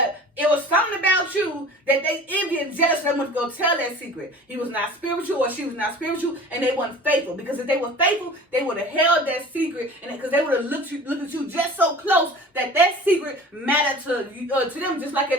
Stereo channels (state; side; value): normal; both; correlation 0.42